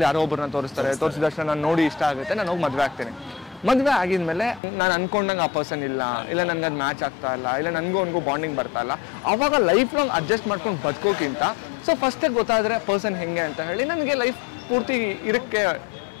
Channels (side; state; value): right; drops out; at 4.6 s